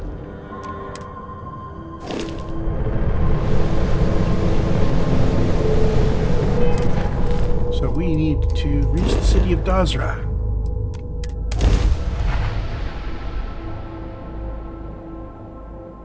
So we need to reach the city of Dazra.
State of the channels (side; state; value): both; identical; correlation 1.00